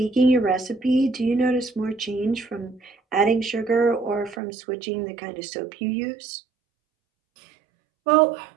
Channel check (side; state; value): left; drops out; at 4.4 s